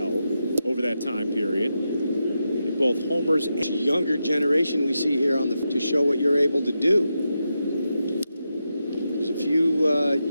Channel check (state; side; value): inverted; both; correlation -0.87